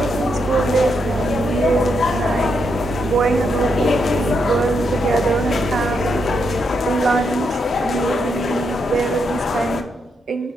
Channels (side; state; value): both; normal; correlation 0.80